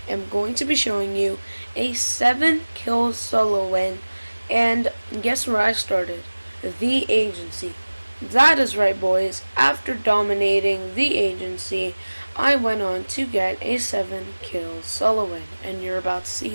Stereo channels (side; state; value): both; inverted; correlation -1.00